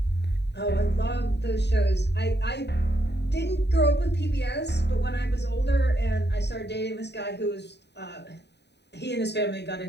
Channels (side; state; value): right; late; 0.50 ms